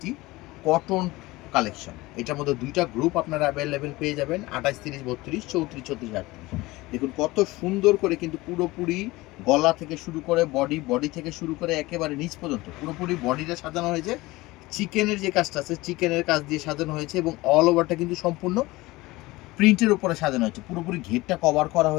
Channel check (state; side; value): quieter; right; 20.4 dB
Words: কটন কালেকশন। এটার মধ্যে ২ টা গ্রুপ আপনারা অ্যাভেলেবেল পেয়ে যাবেন ২৮, ৩০, ৩২, ৩৪, ৩৬, ৩৮। দেখুন কত সুন্দর করে কিন্তু পুরোপুরি গলা থেকে শুরু করে বডি থেকে শুরু করে একেবারে নিচ পর্যন্ত পুরোপুরি বডিটা সাজানো হয়েছে। চিকেনের যে কাজটা আছে চিকেনের কাজ দিয়ে সাজানো হয়েছে এবং অল ওভারটা কিন্তু সম্পূর্ণ প্রিন্টের উপরে সাজানো হয়েছে। পুরোপুরি ঘেরটা কভার করা